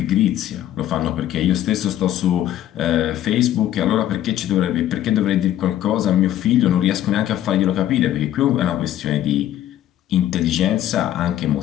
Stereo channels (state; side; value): quieter; right; 12.2 dB